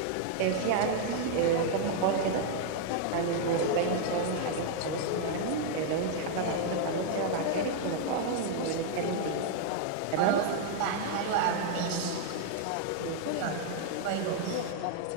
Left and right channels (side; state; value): both; different; correlation -0.01